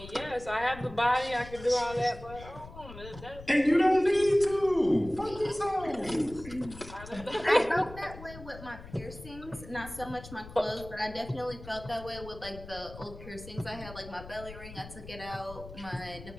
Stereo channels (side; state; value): left; noise; rumble, 15 dB below the sound